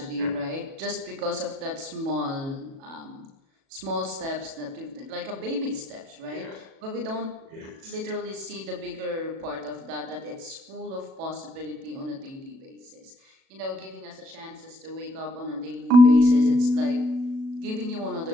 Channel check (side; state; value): left; late; 37 ms